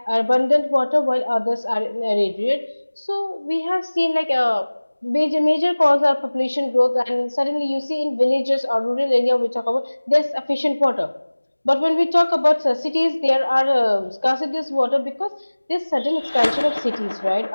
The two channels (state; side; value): inverted; both; correlation -1.00